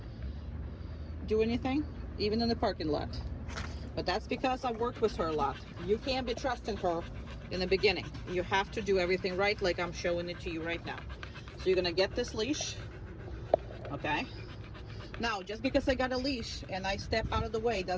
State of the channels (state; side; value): identical; both; correlation 1.00